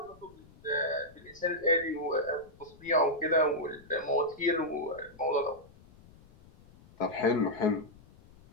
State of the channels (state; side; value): noise; left; rumble, 24 dB below the sound